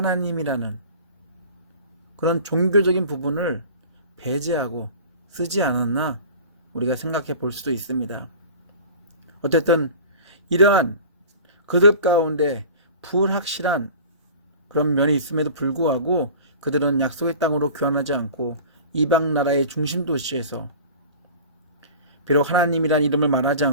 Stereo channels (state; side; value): inverted; both; correlation -0.40